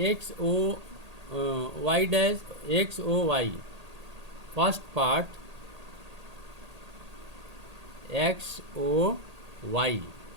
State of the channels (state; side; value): late; left; 1.8 ms